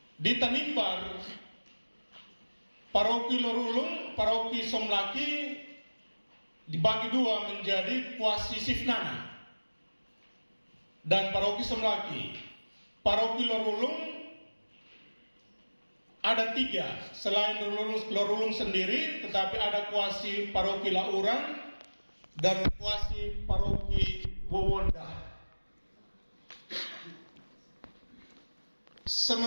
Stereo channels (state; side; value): inverted; both; correlation -1.00